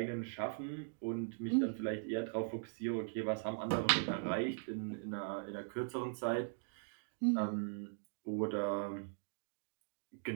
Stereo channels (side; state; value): left; silent; digital silence